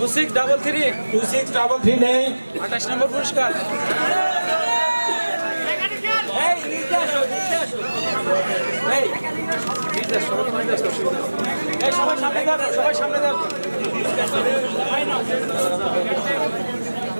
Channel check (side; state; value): both; inverted; correlation -1.00